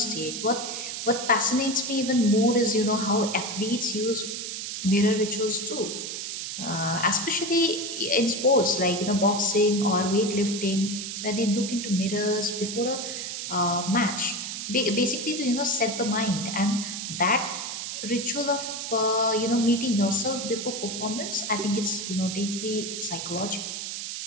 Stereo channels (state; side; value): noise; right; hiss, 5 dB below the sound